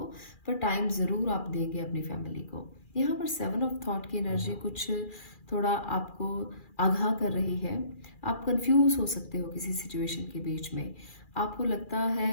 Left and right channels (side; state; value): right; late; 2.4 ms